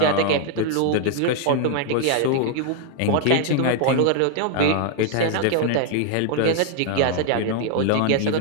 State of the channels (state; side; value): different; both; correlation 0.00